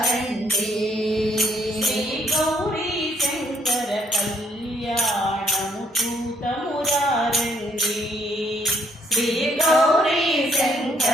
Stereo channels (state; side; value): normal; both; correlation 0.68